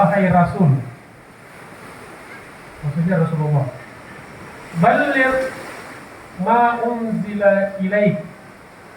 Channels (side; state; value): both; identical; correlation 1.00